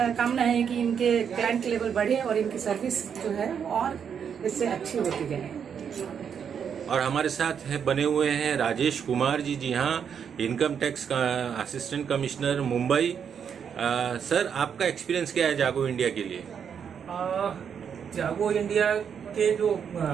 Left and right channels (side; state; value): left; quieter; 7.5 dB